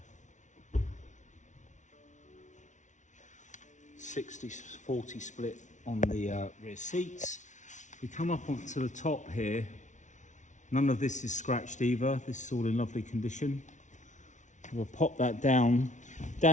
60-40 split on the rear seats. If we come up onto the top here, none of this is scratched either. This is all in lovely condition. We'll pop that down.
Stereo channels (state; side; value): late; right; 0.36 ms